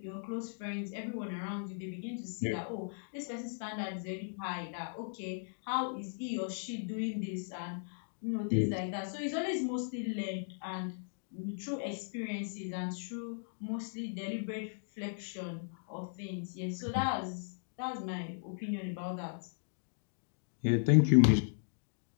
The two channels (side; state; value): right; silent; digital silence